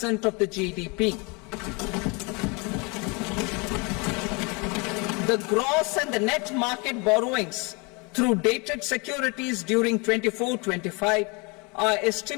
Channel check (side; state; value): right; quieter; 29.9 dB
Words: of the GDP. The gross and the net market borrowings through dated securities during 24-25 are